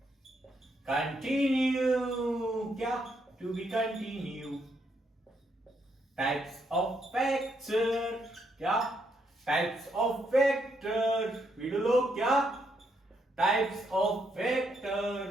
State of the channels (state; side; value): normal; both; correlation 0.76